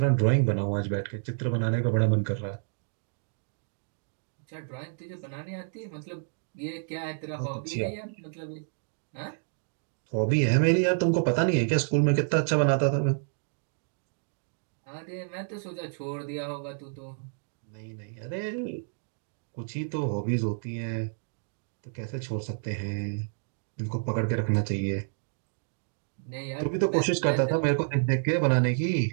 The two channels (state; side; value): silent; left; digital silence